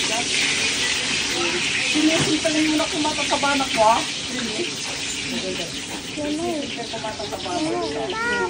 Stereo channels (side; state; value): both; identical; correlation 1.00